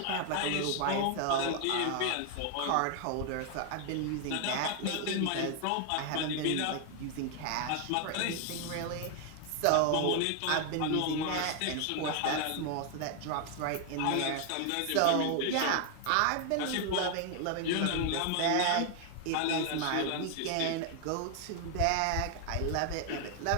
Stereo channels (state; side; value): different; both; correlation 0.00